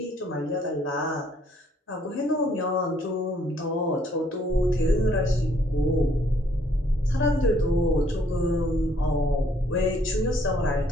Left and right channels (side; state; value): both; normal; correlation 0.65